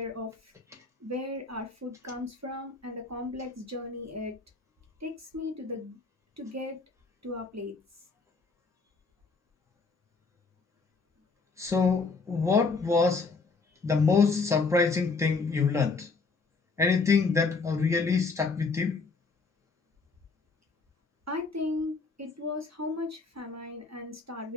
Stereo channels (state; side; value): quieter; right; 4.3 dB